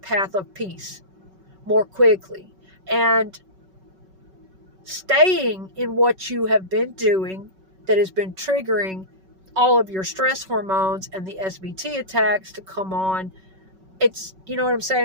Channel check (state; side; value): late; left; 5.3 ms